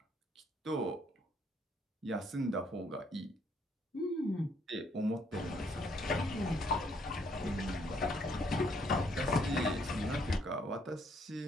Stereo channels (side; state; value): both; normal; correlation 0.68